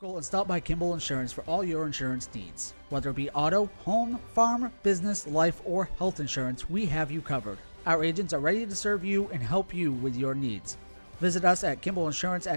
And stop by Kimball Insurance for all your insurance needs. Whether it be auto, home, farm, business, life, or health insurance, we have you covered. Our agents are ready to serve you and help you with your needs. Visit us at Kimball Insurance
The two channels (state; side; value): inverted; both; correlation -1.00